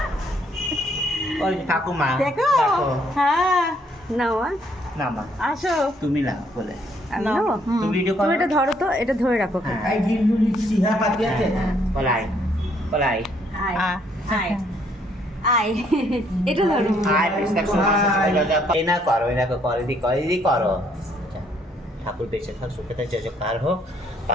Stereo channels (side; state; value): both; normal; correlation 0.68